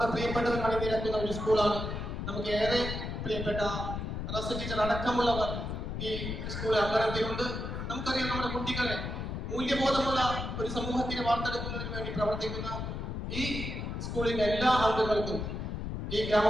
പ്രിയപ്പെട്ടവർ അണിനിരക്കുന്ന ഒരു സ്കൂളാണ്. നമുക്ക് ഏറെ പ്രിയപ്പെട്ട റസ് ടീച്ചർ അടക്കമുള്ളവർ ഈ സ്കൂൾ അംഗനത്തിലുണ്ട്. നമുക്കറിയാം, നമ്മുടെ കുട്ടികളെ മൂല്യബോധമുള്ള ഒരു സമൂഹത്തിനെ വാർത്തെടുക്കുന്നതിന് വേണ്ടി പ്രവർത്തിക്കുന്ന ഈ സ്കൂളിന്റെ എല്ലാ അംഗങ്ങൾക്കും ഈ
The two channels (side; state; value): left; noise; rumble, 4 dB below the sound